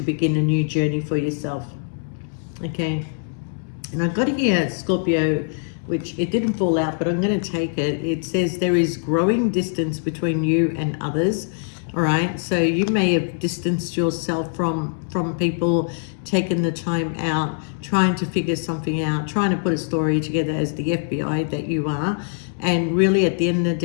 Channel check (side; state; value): right; silent; digital silence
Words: begin a new journey for yourself. Okay, and I got here, Scorpio, which it didn't fall out, but I'm going to take it. It says there is growing distance between you and others. All right, so you may have distanced yourself from people, taken the time out, trying to figure something out, trying to put a story together as the FBI that you are. And really at the end of the